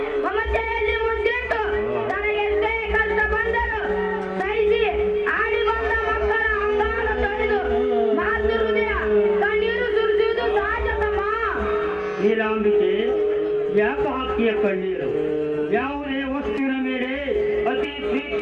ಮಮತೆಯಲ್ಲಿ ಮುದ್ದಿಟ್ಟು ತನಗೆಷ್ಟೇ ಕಷ್ಟ ಬಂದರು ಸಹಿಸಿ ಆಡಿ ಬಂದ ಮಕ್ಕಳ ಯಾಕ ಹಾಕಿಯ ಕಣ್ಣೀರು? ಯಾವುದೇ ವಸ್ತುವಿನ ಮೇಲೆ ಅತಿ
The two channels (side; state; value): both; identical; correlation 1.00